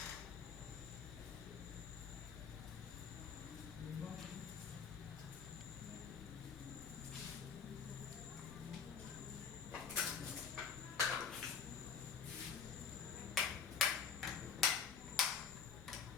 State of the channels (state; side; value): quieter; right; 6.6 dB